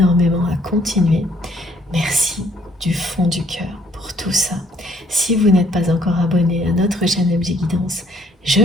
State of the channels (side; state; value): both; normal; correlation 0.64